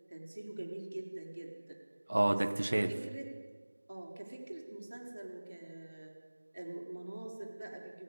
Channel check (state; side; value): inverted; both; correlation -1.00